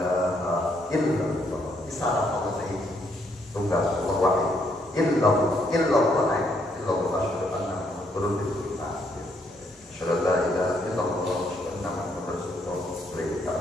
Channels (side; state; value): both; normal; correlation 0.72